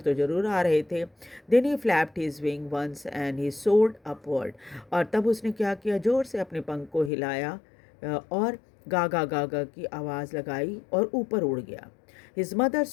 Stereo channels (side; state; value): right; drops out; at 7.1 s